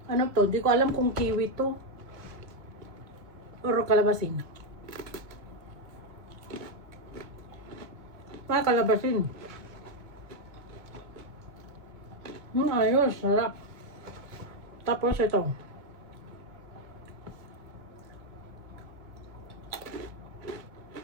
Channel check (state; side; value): late; left; 2.4 ms